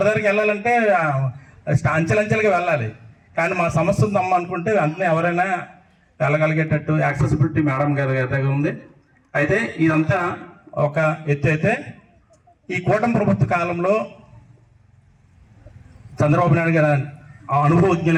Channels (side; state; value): both; identical; correlation 1.00